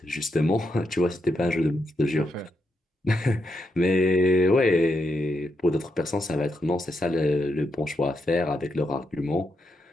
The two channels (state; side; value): normal; both; correlation 0.82